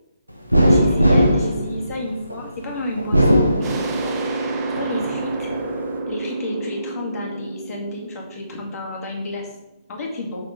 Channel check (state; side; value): inverted; both; correlation -0.80